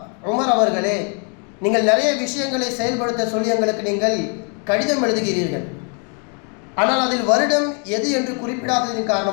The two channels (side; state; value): right; quieter; 38.4 dB